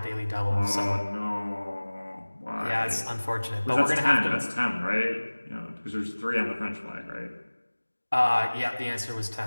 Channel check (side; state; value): both; inverted; correlation -1.00